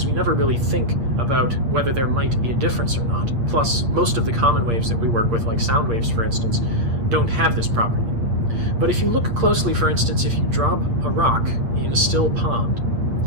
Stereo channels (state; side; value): late; left; 8.5 ms